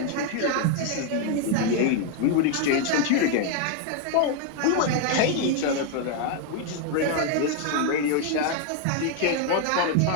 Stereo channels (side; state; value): both; different; correlation 0.01